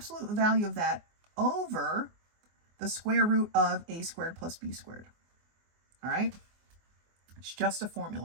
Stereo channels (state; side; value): late; left; 24 ms